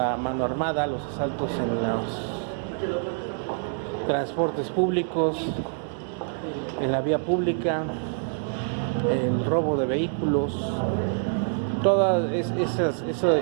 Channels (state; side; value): silent; left; digital silence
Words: mano armada, los asaltos en los transportes públicos, en la vía pública, el robo de vehículos, todo ese